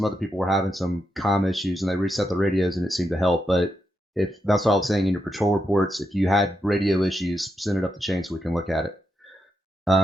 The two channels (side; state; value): both; normal; correlation 0.84